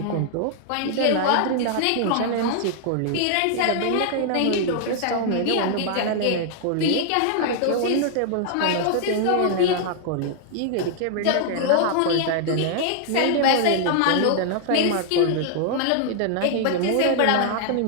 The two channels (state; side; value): different; both; correlation 0.00